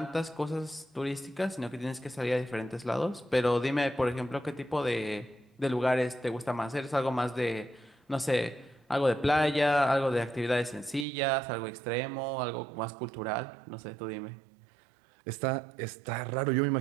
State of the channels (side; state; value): left; drops out; at 11.1 s